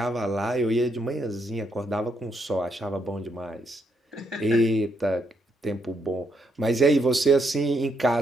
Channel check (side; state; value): both; normal; correlation 0.76